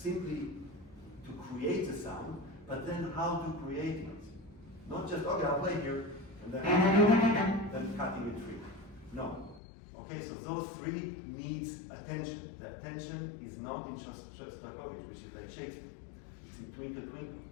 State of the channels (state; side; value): drops out; right; at 9.6 s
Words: to create a sound, but then how to create it. Not just, okay, I'll play here, and then cutting a tree. No. Okay, so those three needs attention. The attention is not in Shostakovich, which is like Shakespeare. It's in Twinkle Twinkle.